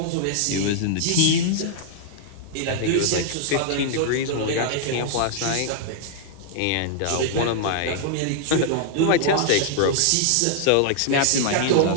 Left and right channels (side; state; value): both; different; correlation -0.01